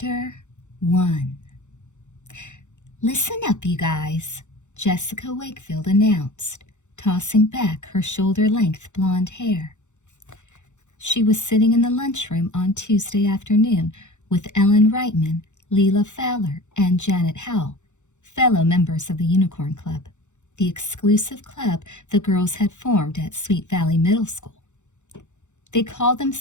1. "Listen up, you guys," Jessica Wakefield announced, tossing back her shoulder-length blonde hair. She was sitting in the lunchroom on Tuesday afternoon with Ellen Reitman, Leela Fowler, and Janet Howell, fellow members of the Unicorn Club, the exclusive club the girls had formed at Sweet Valley Middle School. They called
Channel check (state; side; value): late; right; 0.84 ms